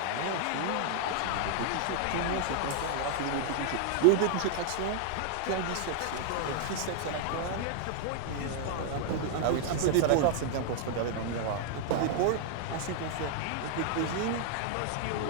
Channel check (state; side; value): different; both; correlation -0.01